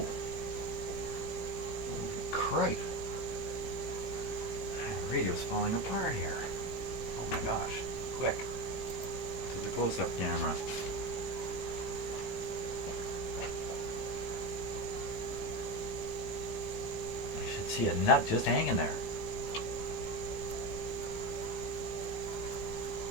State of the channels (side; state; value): right; late; 18 ms